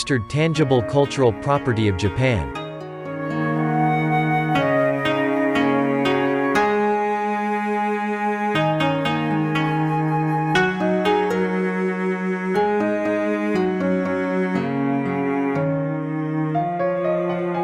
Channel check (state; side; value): identical; both; correlation 1.00